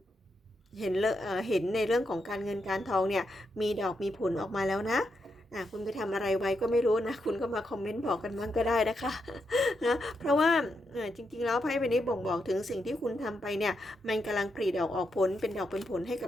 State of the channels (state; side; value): normal; both; correlation 0.83